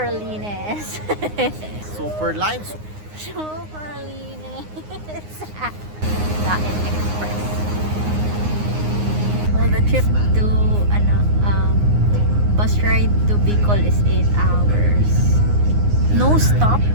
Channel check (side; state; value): left; late; 9.7 ms